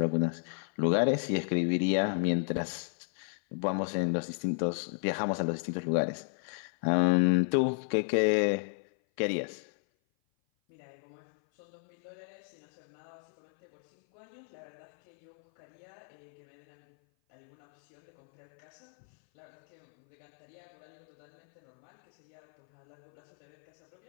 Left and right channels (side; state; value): right; silent; 55 dB below the other